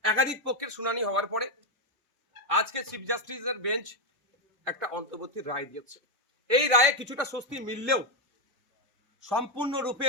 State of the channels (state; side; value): normal; both; correlation 0.05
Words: একাধিক পক্ষের শুনানি হওয়ার পরে আজকে চিফ জাস্টিসের বেঞ্চ একটা অন্তর্বর্তী রায় দিয়েছে। এই রায়ে কিছুটা স্বস্তি মিললেও